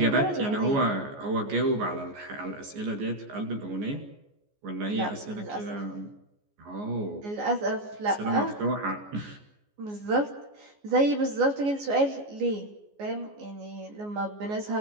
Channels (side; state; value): left; late; 14 ms